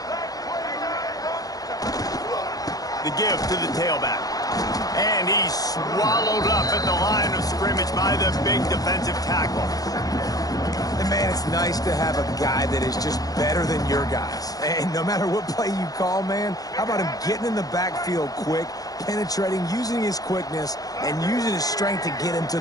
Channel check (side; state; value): right; late; 0.18 ms